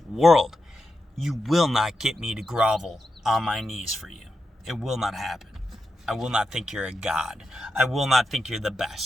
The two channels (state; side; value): normal; both; correlation 0.88